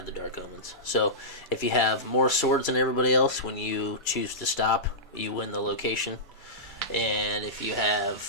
the Dark Omens. So if you have more swords than everybody else, when you choose to stop, you win the location. And if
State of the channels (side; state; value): both; normal; correlation -0.16